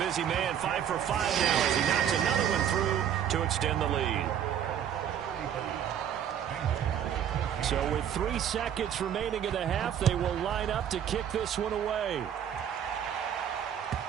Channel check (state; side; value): quieter; left; 9.4 dB